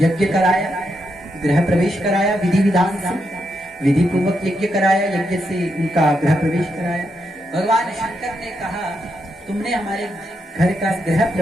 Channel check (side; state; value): both; normal; correlation 0.82